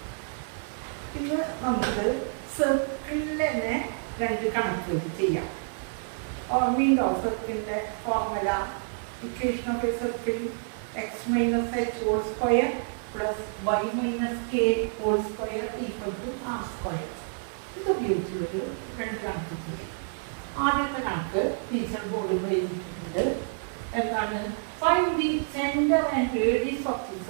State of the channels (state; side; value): silent; left; digital silence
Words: ഇന്ന് നമുക്ക് സർക്കിളിനെ 2 കണക്കുകൾ ചെയ്യാം. ഓർമ്മയുണ്ടോ സർക്കിളിന്റെ formula? Equation of A circle x minus h whole square plus y minus k whole square equal to r square. ഇത് ഉപയോഗിച്ചുള്ളൊരു 2 കണക്ക് ചെയ്യാം. ആദ്യത്തെ കണക്ക് ടീച്ചർ ബോർഡിൽ എഴുതിയിട്ടുണ്ട്. എന്താണ്? Find the centre and radius of the